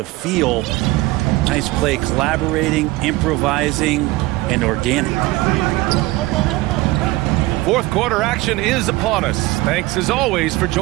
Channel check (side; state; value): left; quieter; 19.8 dB